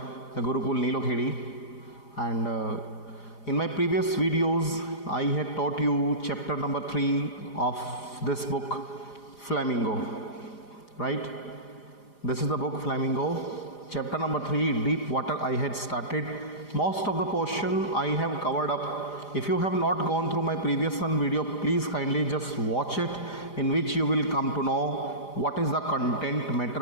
the Gurukul Nilokhedi. And in my previous videos, I had taught you chapter number 3 of this book, Flamingo. Right? This is the book Flamingo. Chapter number 3, Deep Water, I had started. Most of the portion I have covered up. If you have not gone through my previous one video, please kindly just watch it, in which you will come to know what is the content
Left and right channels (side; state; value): right; late; 4.9 ms